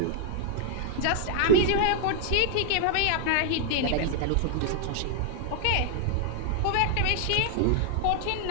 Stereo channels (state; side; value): different; both; correlation -0.01